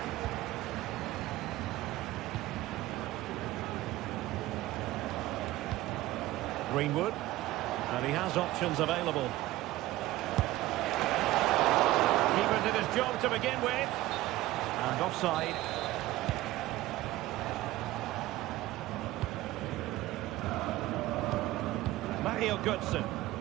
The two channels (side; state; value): left; quieter; 16.8 dB